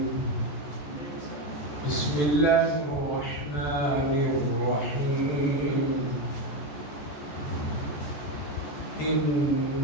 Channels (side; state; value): right; late; 13 ms